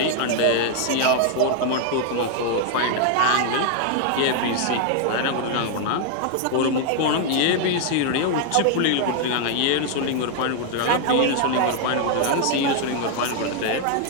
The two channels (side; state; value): both; different; correlation 0.00